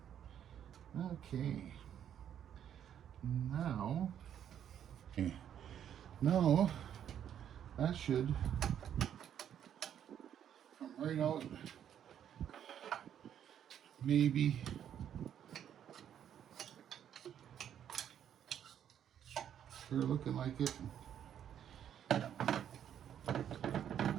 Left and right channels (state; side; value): quieter; left; 9.6 dB